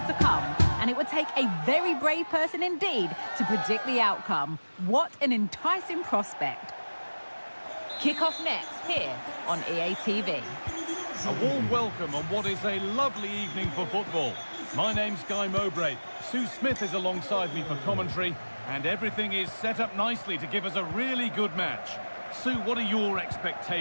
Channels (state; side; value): inverted; both; correlation -1.00